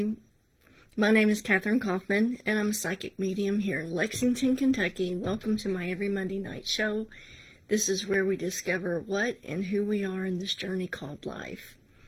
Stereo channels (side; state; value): both; identical; correlation 1.00